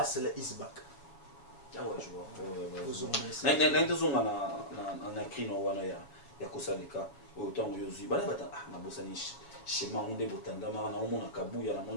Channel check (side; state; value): right; late; 7.2 ms